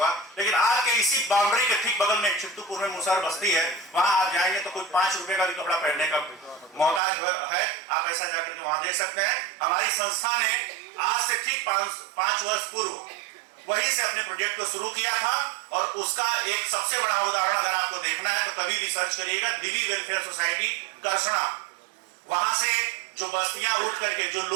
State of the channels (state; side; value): drops out; left; at 7.0 s